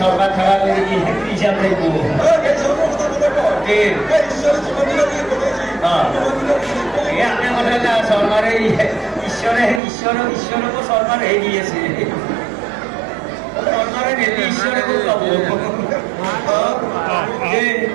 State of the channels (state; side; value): drops out; left; at 9.8 s